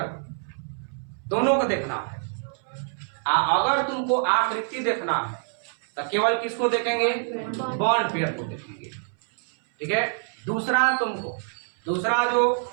दोनों को देखना है। अगर तुमको आकृति देखना है तो केवल किसको देखेंगे, बॉन्ड पेयर को देखेंगे। ठीक है, दूसरा जो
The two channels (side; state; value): left; silent; 61 dB below the other